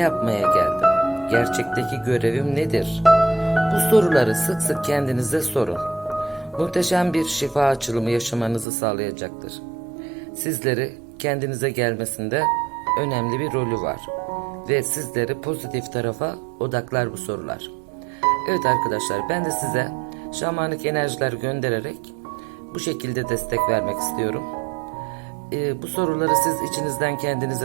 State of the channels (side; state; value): left; drops out; at 8.7 s